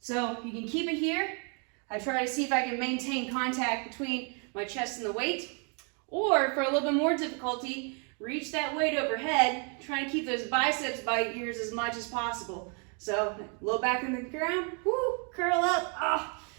So you can keep it here. I try to see if I can maintain contact between my chest and the weight. Or for a little bit more difficulty, reach that weight overhead, try and keep those biceps by your ears as much as possible. So low back in the ground, whoo, curl up, ah.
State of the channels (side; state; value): left; quieter; 37.9 dB